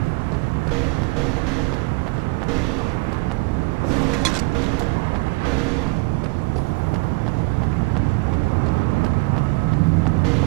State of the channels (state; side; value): quieter; left; 26.7 dB